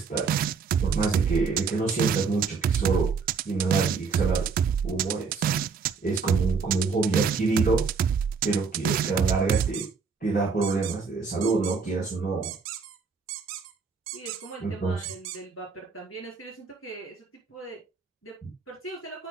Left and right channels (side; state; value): left; quieter; 5.1 dB